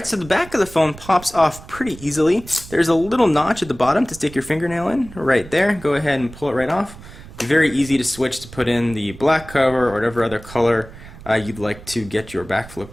so the back of the phone pops off pretty easily. There's a little notch at the bottom to stick your fingernail in, right there. Go ahead and pull it right off. Very easy to switch to put in the black cover or whatever other color you'd like to get your back flip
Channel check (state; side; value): noise; right; rumble, 17 dB below the sound